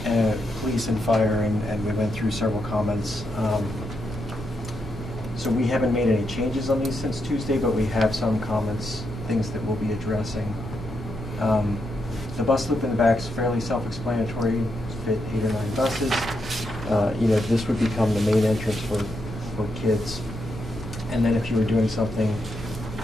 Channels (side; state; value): both; normal; correlation 0.82